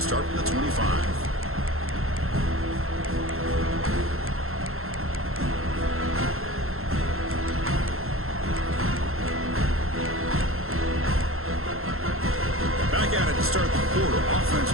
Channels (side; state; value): left; late; 0.62 ms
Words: start from the 25. Back at it to start the quarter. Offense